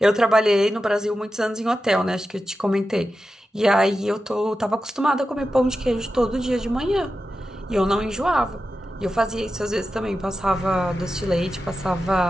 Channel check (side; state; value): both; normal; correlation 0.92